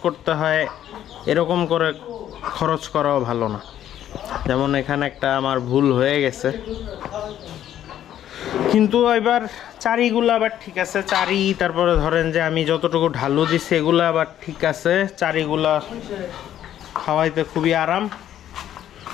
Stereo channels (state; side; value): quieter; right; 11.2 dB